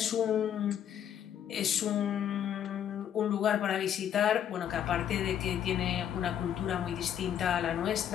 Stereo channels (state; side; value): quieter; right; 9.6 dB